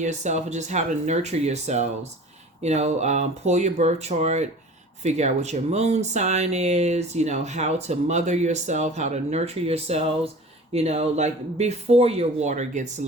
of just how to nurture yourselves. Pull your birth chart, figure out what your moon sign is, how to mother yourself, how to nurture yourselves, like before your water gets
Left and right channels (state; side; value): normal; both; correlation 0.41